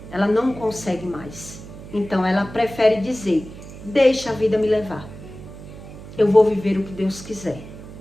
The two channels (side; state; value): right; noise; hum, 15 dB below the sound